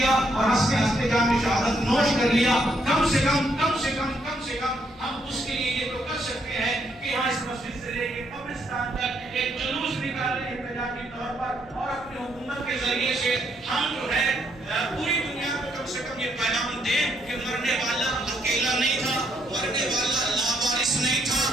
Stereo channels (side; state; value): both; normal; correlation 0.73